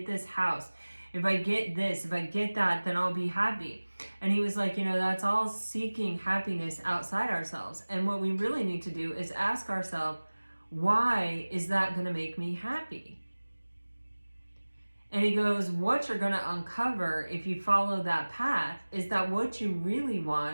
this house, if I get this, if I get that, then I'll be happy. And he was like, you know, that's all seeking happiness outside ourselves. And what we really need to do is ask ourselves, why is that going to make me happy? And he goes, what you're going to uncover if you follow that path is that what you really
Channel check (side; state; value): both; inverted; correlation -1.00